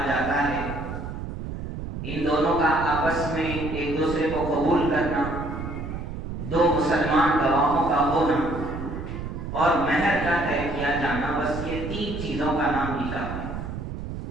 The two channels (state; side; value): noise; right; rumble, 7 dB below the sound